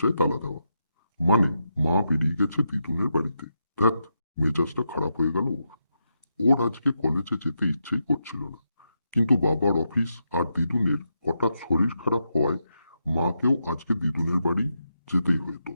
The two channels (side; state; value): both; inverted; correlation -0.84